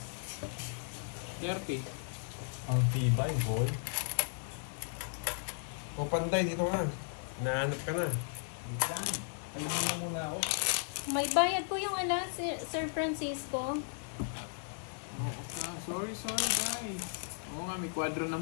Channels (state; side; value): silent; right; 54 dB below the other